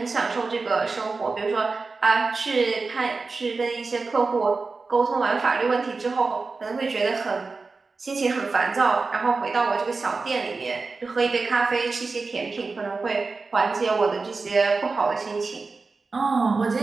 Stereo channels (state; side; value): quieter; left; 4.1 dB